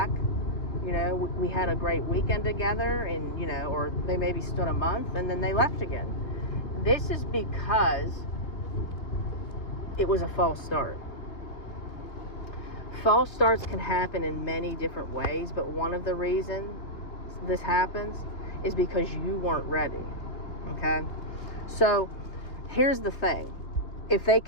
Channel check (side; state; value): right; late; 2.8 ms